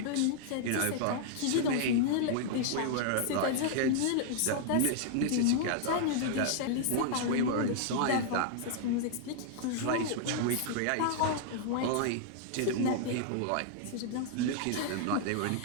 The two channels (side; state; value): both; different; correlation -0.01